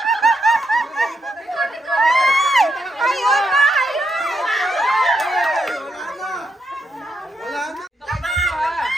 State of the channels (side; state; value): both; normal; correlation 0.81